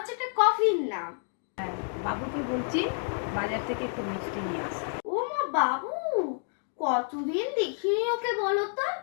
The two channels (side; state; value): right; silent; digital silence